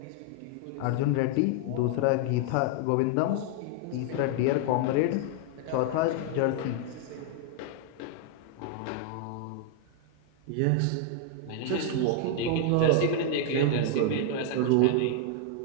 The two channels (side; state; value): both; different; correlation 0.00